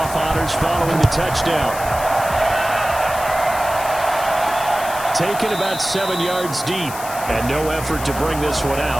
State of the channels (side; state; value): left; noise; hiss, 12 dB below the sound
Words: honors following the touchdown. Taken about 7 yards deep. And no effort to bring this one